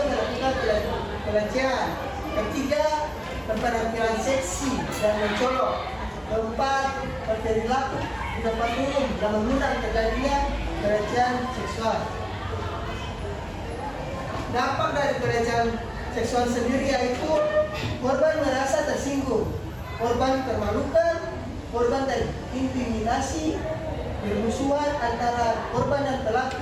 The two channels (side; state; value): both; identical; correlation 1.00